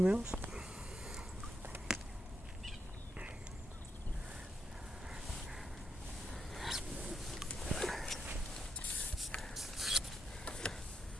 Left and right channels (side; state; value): both; normal; correlation 0.81